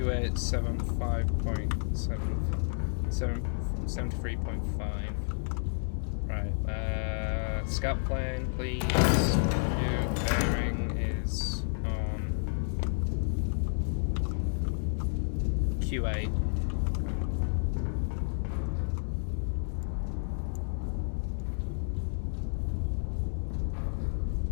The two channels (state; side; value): silent; right; digital silence